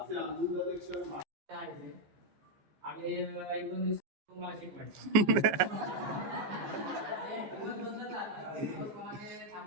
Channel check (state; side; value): late; left; 15 ms